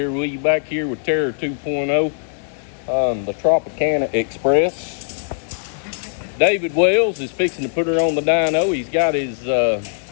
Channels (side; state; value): right; silent; 66 dB below the other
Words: with you, back here with Terror 2.0 on the Tropicana Express. David Wells is fixing to put her on the dyno. He's got his